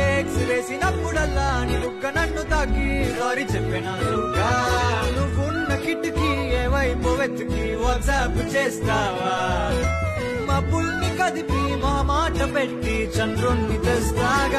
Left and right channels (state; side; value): identical; both; correlation 1.00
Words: వేసినప్పుడల్లా నీ బుగ్గ నన్ను తాకి సారీ చెప్పినట్టుగా. నువ్వున్న కిటికీ ఏ వైపు వెతికి వాట్సాప్ చేస్తావా? మబ్బుల్ని కదిపి మా మాట పెట్టి చంద్రుణ్ణి